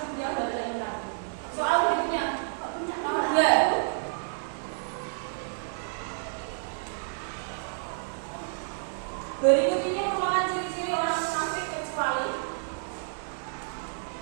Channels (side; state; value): left; silent; digital silence